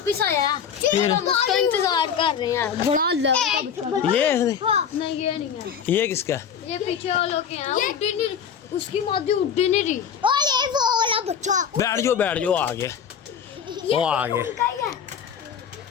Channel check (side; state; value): right; quieter; 7.7 dB